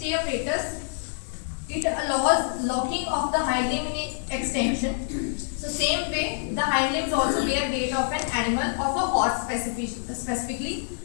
apparatus, it allows locking of the hind limb in extension. So same way, the hind limbs also bear weight of an animal, of a horse specifically.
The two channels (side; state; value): right; silent; digital silence